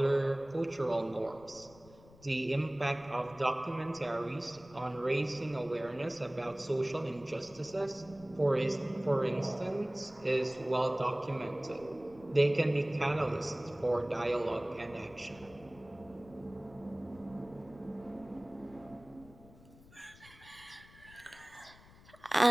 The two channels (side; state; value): left; noise; rumble, 23 dB below the sound